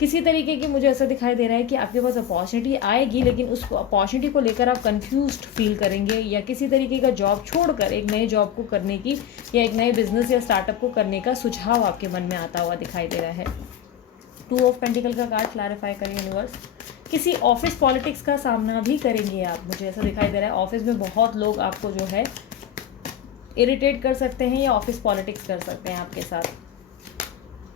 तरीके की मुझे ऐसा दिखाई दे रहा है कि आपके पास अपॉर्चुनिटी आएगी, लेकिन उस अपॉर्चुनिटी को लेकर आप कंफ्यूज्ड फील करेंगे, या किसी तरीके का जॉब छोड़कर एक नए जॉब को करने की, या एक नए बिजनेस या स्टार्टअप को करने का सुझाव आपके मन में आता हुआ दिखाई दे रहा है। 2 ऑफ पेंटिकल का कार्ड क्लैरिफाई करें यूनिवर्स। किसी ऑफिस पॉलिटिक्स का सामना भी करेंगे आप, मुझे ऐसा दिखाई दे रहा है। ऑफिस में बहुत लोग आपको जो है इरिटेट कर सकते हैं, या ऑफिस पॉलिटिक्स कर सकते हैं आपके साथ।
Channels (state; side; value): quieter; right; 9.9 dB